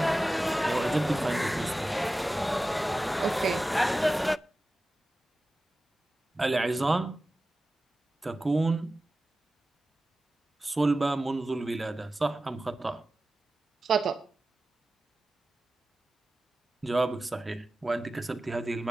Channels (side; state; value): both; normal; correlation 0.95